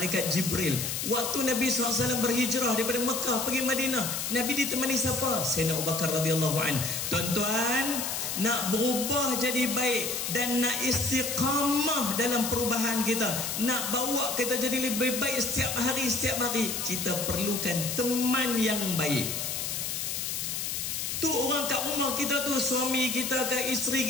Jibril. Waktu Nabi SAW berhijrah daripada Mekah pergi Madinah, Nabi ditemani siapa? Sayyidina Abu Bakar radhiyallahu anhu. Tuan-tuan, nak berubah jadi baik dan nak istiqamah dalam perubahan kita, nak bawa kita jadi lebih baik setiap hari, kita perlukan teman yang baik. Tu orang kat rumah kita tu, suami kita ke isteri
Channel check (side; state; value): left; noise; hiss, 2 dB below the sound